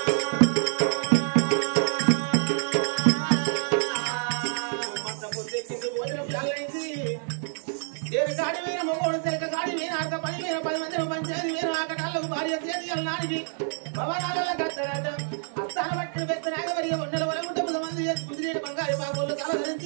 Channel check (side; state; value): left; silent; digital silence